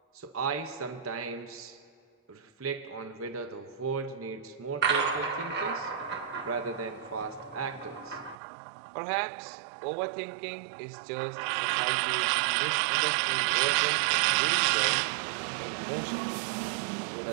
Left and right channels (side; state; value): left; drops out; at 8.3 s